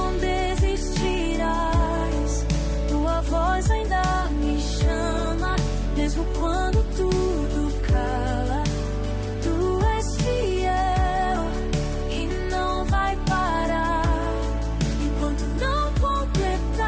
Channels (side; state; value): both; identical; correlation 1.00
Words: desistirás. Tua voz ainda me chama, mesmo quando tudo cala. Tu és fiel e não vai parar enquanto não